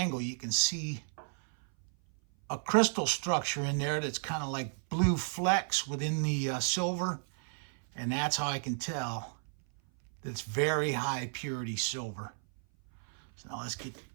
you can see a crystal structure in there that's kind of like blue flecks within the silver. And that's how I can tell that it's very high purity silver. So now let's get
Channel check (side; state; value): left; silent; 56 dB below the other